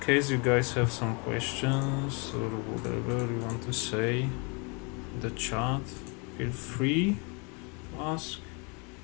you guys have some questions or whatever you want to say in the chat, feel free to ask.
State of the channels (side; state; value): right; quieter; 32.7 dB